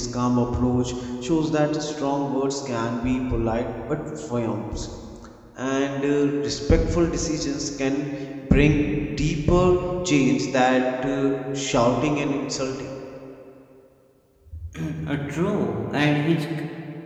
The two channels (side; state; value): both; identical; correlation 1.00